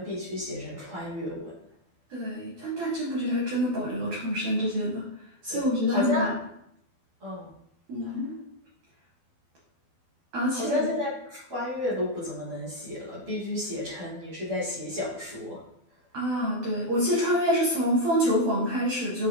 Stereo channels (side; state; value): left; late; 12 ms